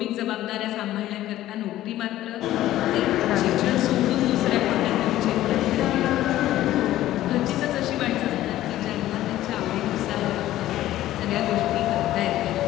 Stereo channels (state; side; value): quieter; right; 14.3 dB